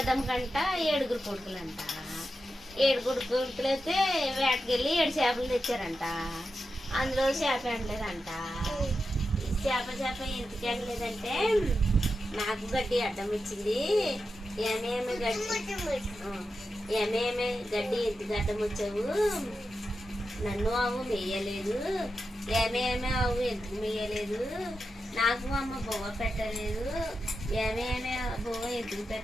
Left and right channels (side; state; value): both; normal; correlation 0.90